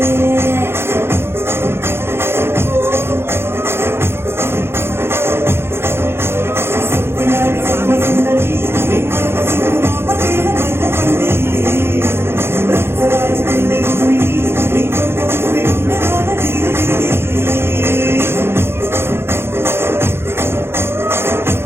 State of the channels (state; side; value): late; left; 0.12 ms